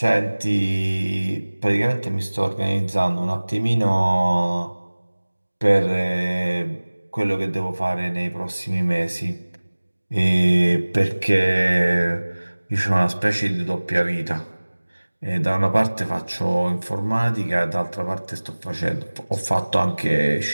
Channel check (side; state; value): both; inverted; correlation -1.00